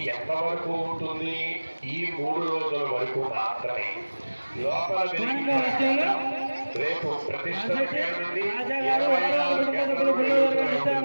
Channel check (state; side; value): inverted; both; correlation -1.00